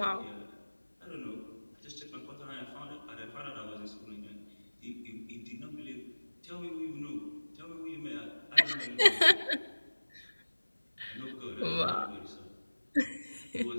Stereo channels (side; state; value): both; inverted; correlation -1.00